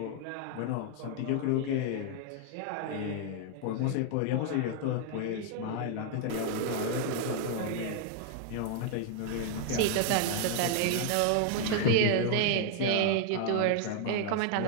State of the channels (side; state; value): both; different; correlation 0.00